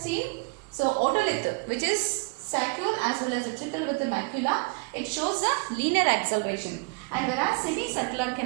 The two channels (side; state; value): left; quieter; 29.9 dB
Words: so otolith which is saccule as well as utricle with the macula, it shows a linear acceleration, and whereas semicircular